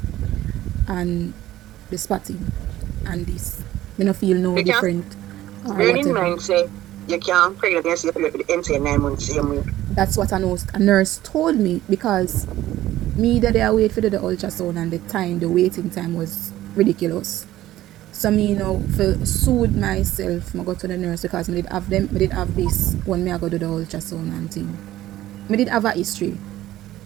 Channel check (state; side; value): quieter; left; 14.5 dB